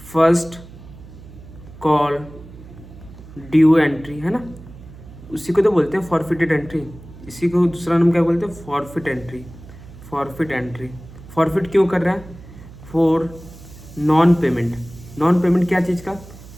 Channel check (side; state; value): right; noise; hum, 18 dB below the sound